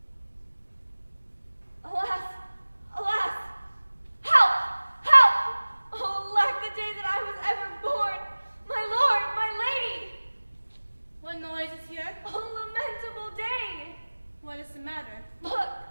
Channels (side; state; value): both; inverted; correlation -1.00